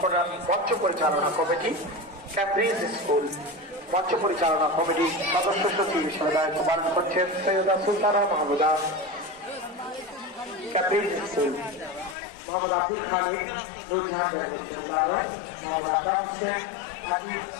মঞ্চ পরিচালনা কমিটি, ক্যামব্রিজ স্কুল মঞ্চ পরিচালনা কমিটি সদস্য সচিব হিসেবে দায়িত্ব পালন করছেন সৈয়দা সুলতানা মাহমুদা। ক্যামব্রিজ স্কুল মোহাম্মদ আব্দুল খালিক, নুরজাহান মোহাম্মদ আকাশ হোসেন, হাবিব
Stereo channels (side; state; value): right; drops out; at 12.2 s